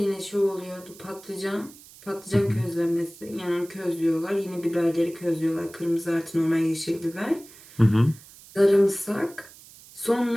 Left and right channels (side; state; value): right; noise; hiss, 21 dB below the sound